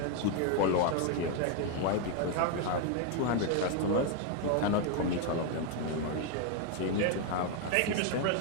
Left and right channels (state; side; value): different; both; correlation 0.01